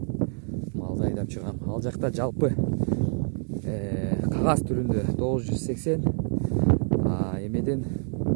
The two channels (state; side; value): silent; left; 56 dB below the other